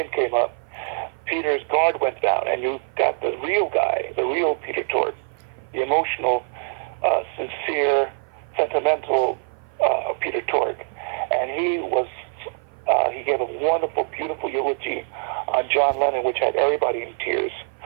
came up, Peter's guard went down, and you got the real guy, the real Peter Tork, the emotional, sincere, sentimental Peter Tork. And he gave a wonderful, beautiful eulogy on John Lennon, which had everybody in tears.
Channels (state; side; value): silent; left; 56 dB below the other